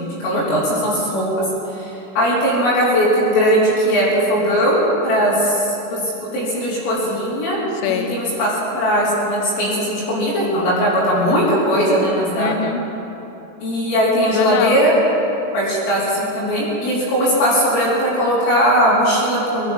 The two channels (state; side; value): late; right; 21 ms